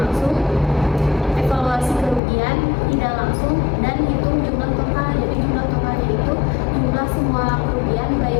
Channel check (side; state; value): right; drops out; at 2.2 s